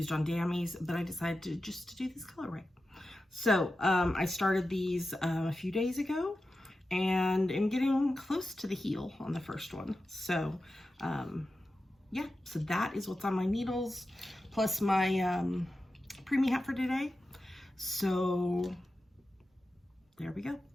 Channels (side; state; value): both; normal; correlation 0.92